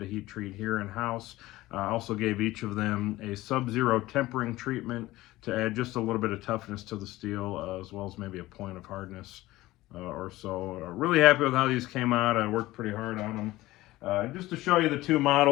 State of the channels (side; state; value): right; quieter; 17.7 dB